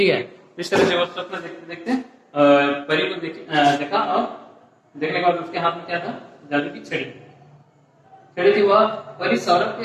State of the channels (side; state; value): both; identical; correlation 1.00